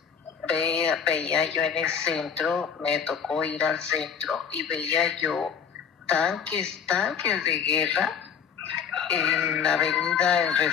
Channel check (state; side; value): quieter; right; 7.2 dB